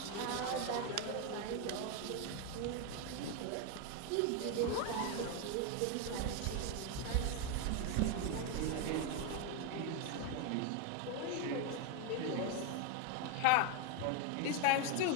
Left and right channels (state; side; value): different; both; correlation 0.02